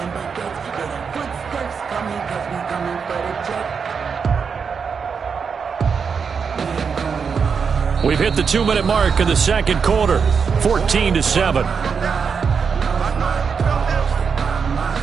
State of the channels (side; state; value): left; quieter; 6.0 dB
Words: We've hit the 2-minute mark in the 2nd quarter, 14-7.